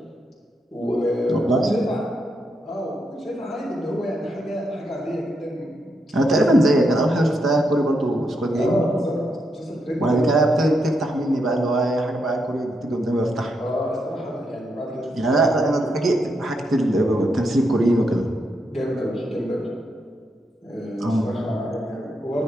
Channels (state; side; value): normal; both; correlation 0.81